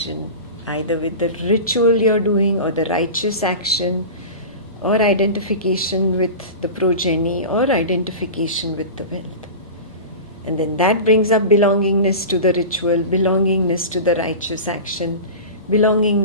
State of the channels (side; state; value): both; inverted; correlation -0.31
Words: either with the ritual you're doing or the righteous action, or identification with the progeny, or identification with the wealth. And then that brings up belongingness to the ritual, belongingness to the righteous action,